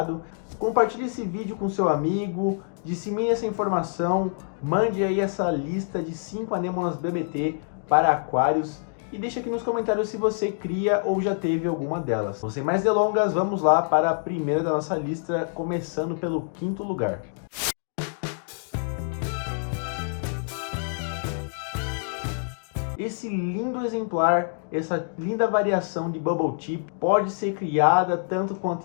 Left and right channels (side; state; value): right; silent; digital silence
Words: Compartilhe esse vídeo com seu amigo, dissemine essa informação, mande aí essa lista de 5 anêmonas BBT para aquários e deixa aqui nos comentários se você cria ou já teve alguma delas. Sem mais delongas, vamos lá para a primeira da nossa lista, começando pelo 5º lugar. Esse lindo exemplar, essa linda variação de Bubble Tip pode ser criada tanto